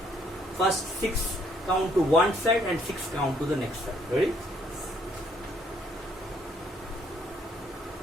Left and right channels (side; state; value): both; normal; correlation 0.67